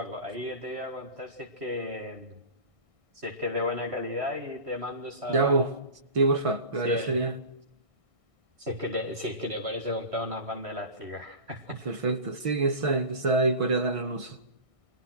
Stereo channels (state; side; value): late; left; 1.6 ms